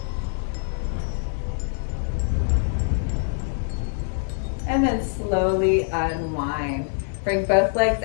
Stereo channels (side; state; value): right; silent; 61 dB below the other